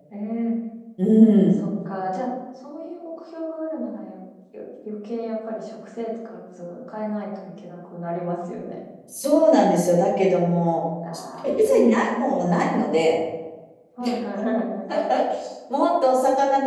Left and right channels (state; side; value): identical; both; correlation 1.00